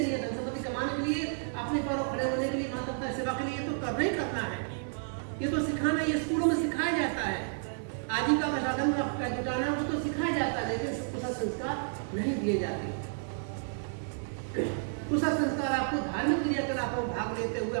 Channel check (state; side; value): silent; left; 56 dB below the other